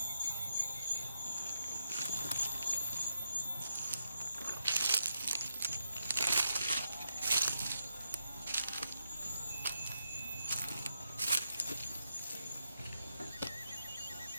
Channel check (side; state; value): both; inverted; correlation -0.83